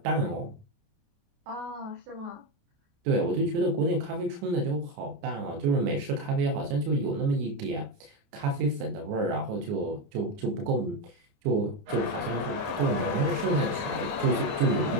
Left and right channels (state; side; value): late; left; 29 ms